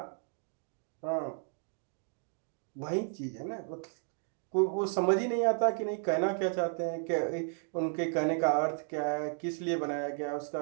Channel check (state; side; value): silent; left; 55 dB below the other